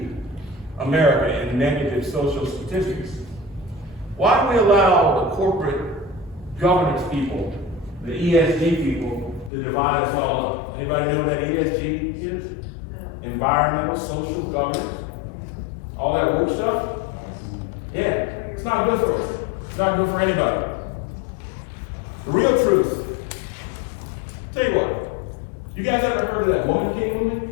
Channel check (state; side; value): drops out; right; at 9.5 s